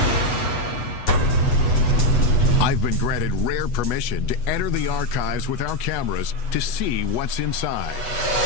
I've been granted rare permission to enter the archives with our cameras to see what's inside.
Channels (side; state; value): right; late; 8.2 ms